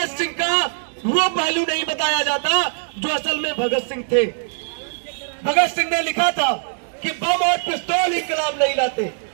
सिंह का वो पहलू नहीं बताया जाता जो असल में भगत सिंह थे। भगत सिंह ने लिखा था कि बम और पिस्तौल इंकलाब नहीं लाते,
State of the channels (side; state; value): left; silent; 65 dB below the other